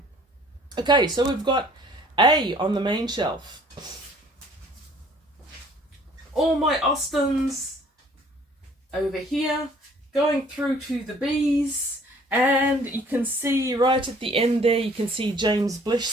Okay, so we've got A on the main shelf. All my Austens over here, going through to the B's, and you can see right at the end there, you can see James Blish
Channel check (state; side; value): normal; both; correlation 0.55